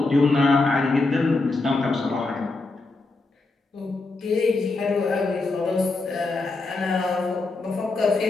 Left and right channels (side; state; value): right; quieter; 3.4 dB